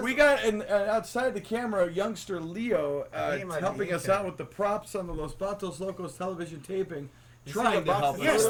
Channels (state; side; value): identical; both; correlation 1.00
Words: We got outside the camera, youngster Leo He might be helping us eating. out with the props on the Los Batos Locos television taping, You see trying the to box help of us. Yes,